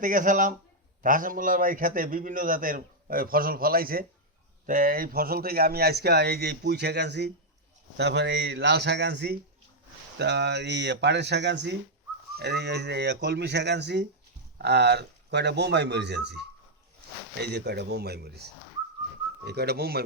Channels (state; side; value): normal; both; correlation -0.03